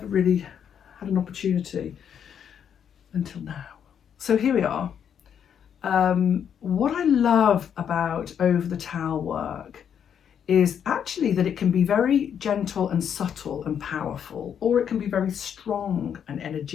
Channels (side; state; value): right; quieter; 8.4 dB